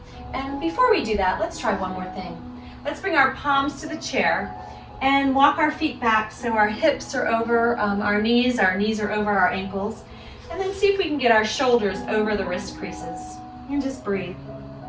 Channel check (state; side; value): identical; both; correlation 1.00